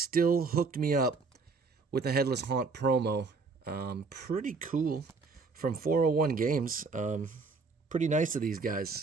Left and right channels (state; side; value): quieter; left; 4.4 dB